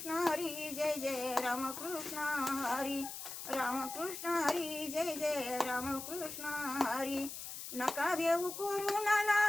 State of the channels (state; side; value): noise; left; hiss, 8 dB below the sound